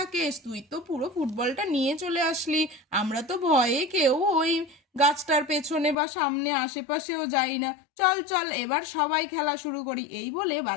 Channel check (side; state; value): right; drops out; at 6.0 s